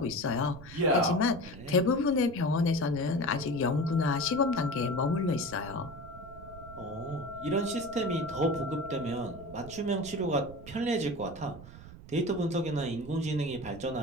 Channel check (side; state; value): right; noise; rumble, 16 dB below the sound